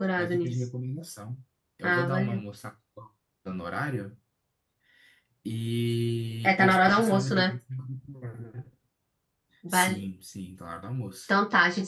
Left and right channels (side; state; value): both; identical; correlation 1.00